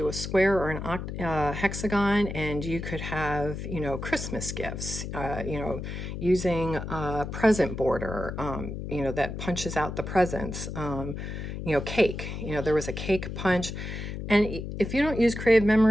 a square or an hexagon, and you could have, Christmas gifts, using a present border, that punches out the presents, cake, there was a cake punch. And if you don't use Creative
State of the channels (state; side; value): noise; left; hum, 6 dB below the sound